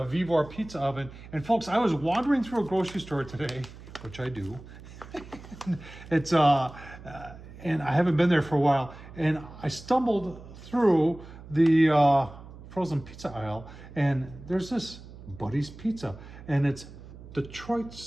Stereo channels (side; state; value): right; noise; hum, 17 dB below the sound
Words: Vivor pizza oven. And folks, I was wandering through a grocery store today, which I do. It's and I haven't been there for a while. And I stumbled through the frozen pizza aisle, and there's this Buddy's Pizza, and it's Detroit